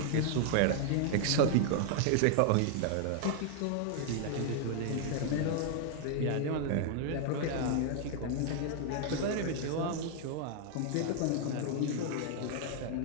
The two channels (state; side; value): different; both; correlation 0.00